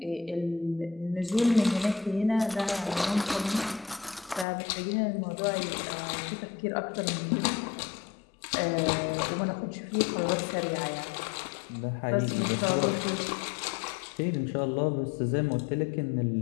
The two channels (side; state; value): right; drops out; at 4.5 s